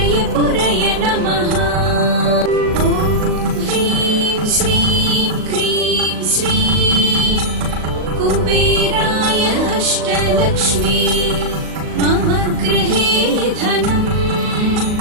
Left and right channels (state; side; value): late; left; 38 ms